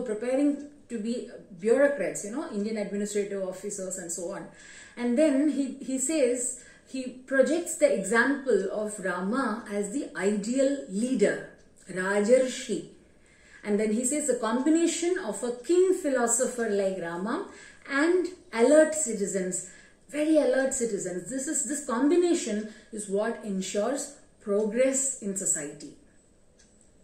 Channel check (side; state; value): both; identical; correlation 1.00